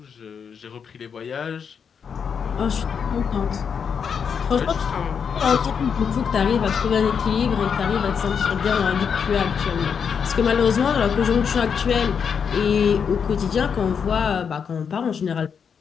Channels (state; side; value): quieter; right; 6.8 dB